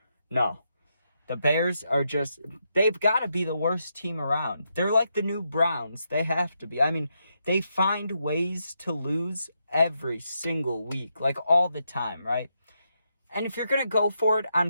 The Bears are just, they've got to be the worst team around. They're like the new Browns. They have to be. I mean, they find ways to lose every single week, like all the time, right? And if you're going to go for it on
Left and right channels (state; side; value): inverted; both; correlation -0.82